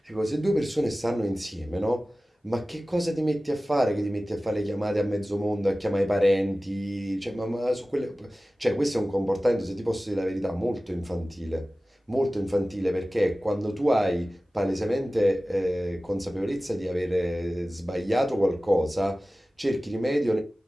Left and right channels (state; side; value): normal; both; correlation 0.97